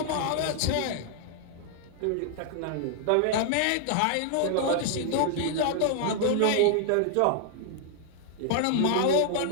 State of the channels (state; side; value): different; both; correlation 0.00